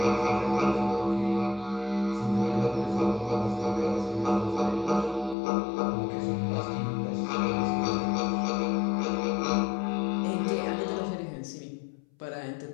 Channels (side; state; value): right; drops out; at 5.4 s